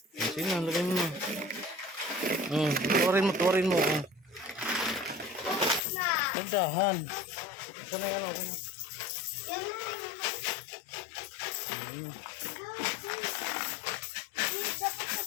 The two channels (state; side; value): drops out; right; at 5.8 s